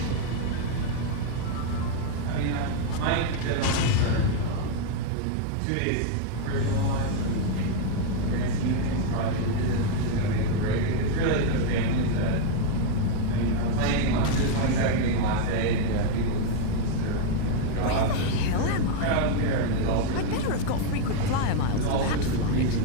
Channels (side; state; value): both; different; correlation 0.00